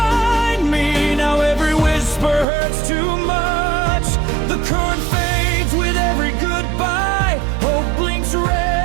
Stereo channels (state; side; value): drops out; left; at 2.5 s